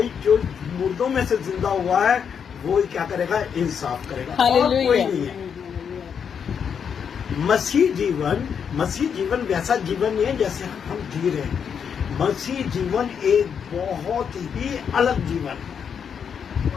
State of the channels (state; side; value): quieter; right; 7.2 dB